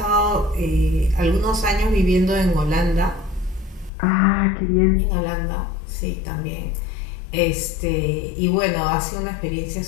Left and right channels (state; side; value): drops out; right; at 3.9 s